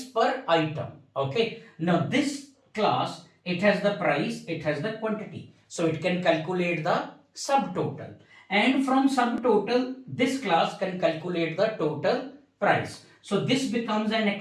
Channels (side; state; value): both; identical; correlation 1.00